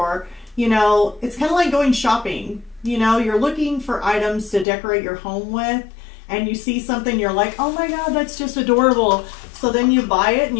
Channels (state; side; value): drops out; right; at 4.7 s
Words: you know, it's kind of like going shopping. You know, you're looking for items to decorate your home with, and you see something, you're like, oh my God, that's just adorable. So then you buy it and